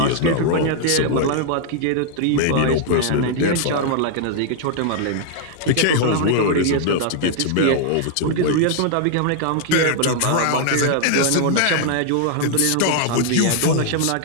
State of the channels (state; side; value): different; both; correlation 0.00